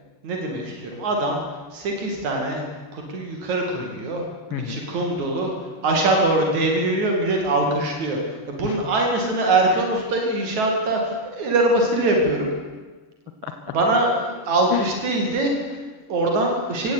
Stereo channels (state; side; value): late; left; 9.3 ms